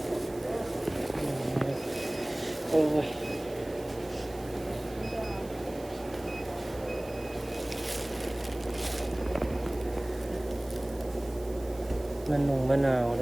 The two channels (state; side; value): noise; right; hiss, 21 dB below the sound